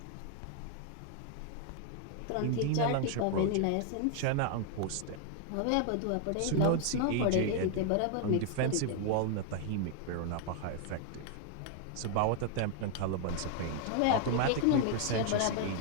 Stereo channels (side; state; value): both; different; correlation 0.00